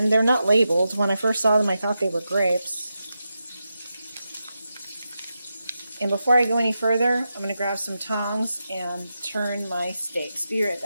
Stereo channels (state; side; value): inverted; both; correlation -0.89